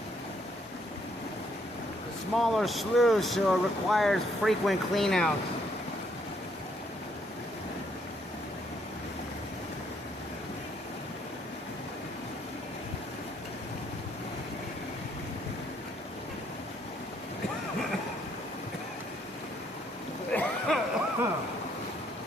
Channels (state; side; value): normal; both; correlation 0.69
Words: Smaller slough, so it requires frequent cleanouts.